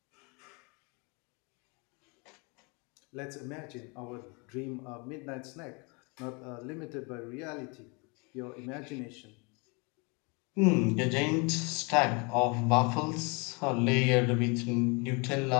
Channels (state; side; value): quieter; right; 31.0 dB